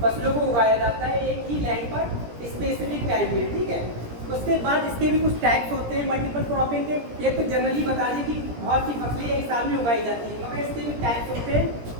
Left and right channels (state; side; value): late; left; 17 ms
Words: फसलों को उगाया जाता है एक ही लैंड पर स्पेसिफिक टाइम में, ठीक है। उसके बाद इसके भी कुछ टाइप्स होते हैं मल्टीपल क्रॉपिंग के। एक तो जनरली बता दें कि बहुत सी फसलें एक साल में उगाई जाती हैं, मगर इसके भी टाइप्स होते हैं,